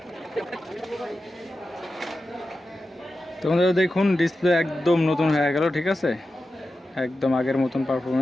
তোমাদের দেখুন ডিসপ্লে একদম নতুন হয়ে গেল। ঠিক আছে, একদম আগের মতন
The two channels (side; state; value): both; normal; correlation 0.92